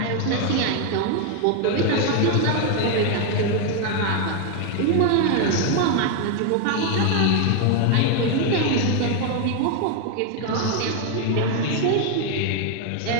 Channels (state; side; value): different; both; correlation 0.01